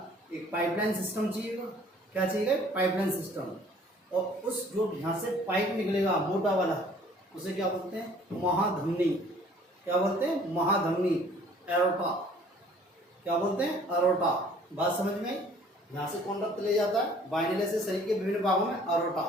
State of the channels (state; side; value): normal; both; correlation 0.55